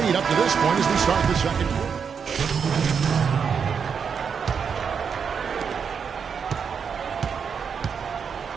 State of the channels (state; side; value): quieter; left; 6.5 dB